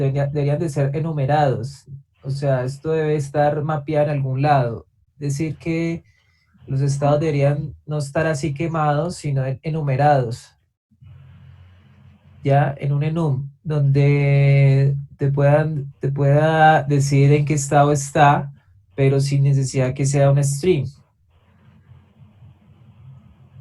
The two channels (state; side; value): identical; both; correlation 1.00